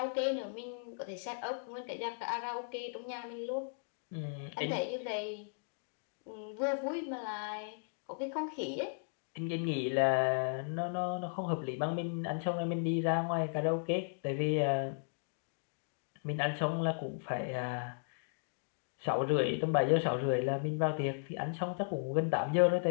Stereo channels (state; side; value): silent; right; digital silence